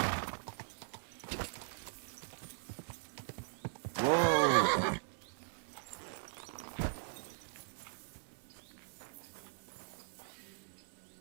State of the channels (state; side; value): silent; left; digital silence